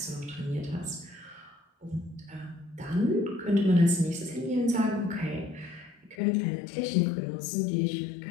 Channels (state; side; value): drops out; right; at 6.2 s